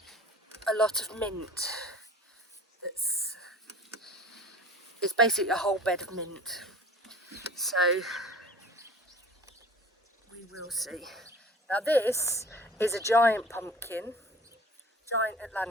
lot of mint. It's basically a whole bed of mint. So we will see. Now this is a giant pumpkin, giant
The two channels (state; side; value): normal; both; correlation 0.44